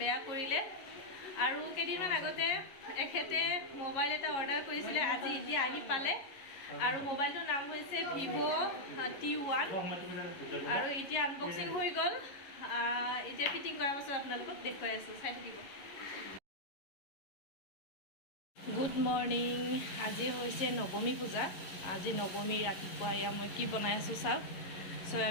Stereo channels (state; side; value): late; right; 11 ms